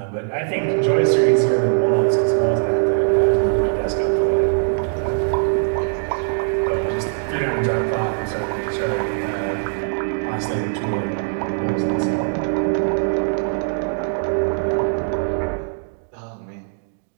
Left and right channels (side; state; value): left; silent; digital silence